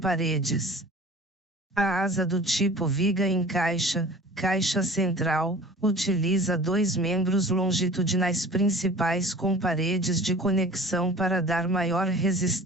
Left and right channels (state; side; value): normal; both; correlation 0.43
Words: A asa do tipo viga em caixa, caixa central, utiliza dois membros longitudinais principais com paredes de conexão para dar maior